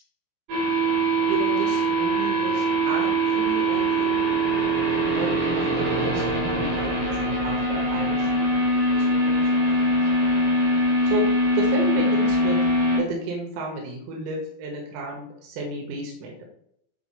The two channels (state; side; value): late; left; 17 ms